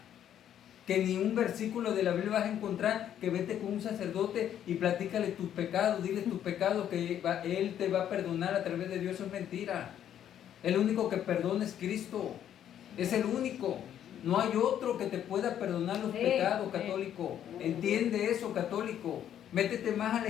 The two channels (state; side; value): quieter; right; 10.3 dB